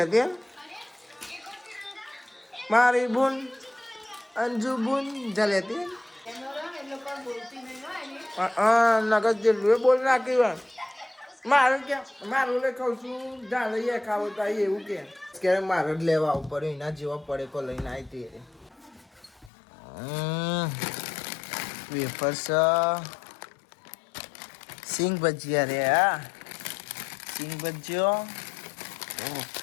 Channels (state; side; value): drops out; right; at 19.5 s